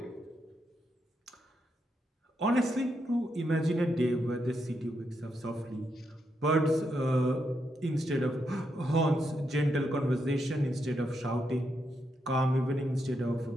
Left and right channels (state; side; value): normal; both; correlation 0.81